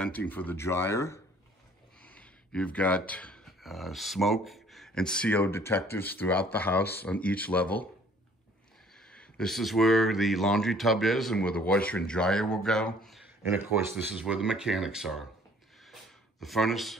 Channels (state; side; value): normal; both; correlation 0.56